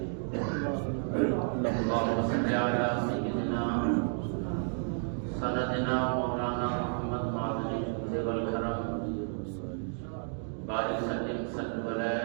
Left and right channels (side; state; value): left; silent; 57 dB below the other